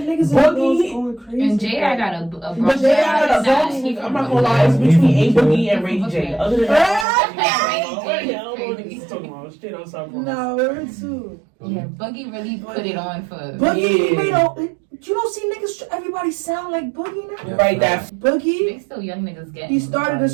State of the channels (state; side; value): drops out; left; at 7.1 s